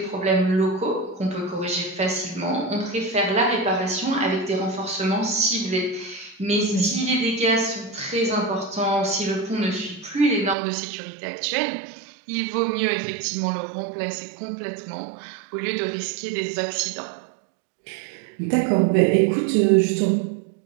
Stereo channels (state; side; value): drops out; left; at 10.6 s